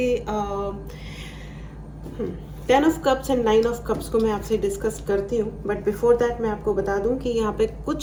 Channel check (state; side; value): identical; both; correlation 1.00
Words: 10 of Cups and 9 of Cups को मैं आपसे डिस्कस करती हूँ, बट बिफोर दैट मैं आपको बता दूं कि यहाँ पे